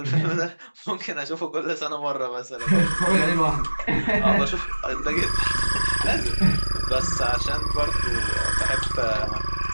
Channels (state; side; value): inverted; both; correlation -1.00